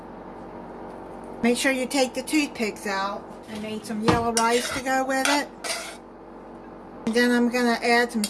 Make sure you take the toothpicks out. I made some yellow rice to go with it. And then I'm going to add some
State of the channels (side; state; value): both; identical; correlation 1.00